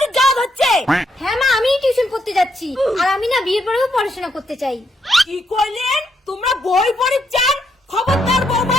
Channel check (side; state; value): both; normal; correlation 0.77